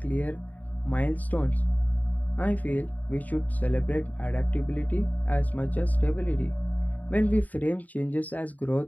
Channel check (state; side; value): late; right; 0.076 ms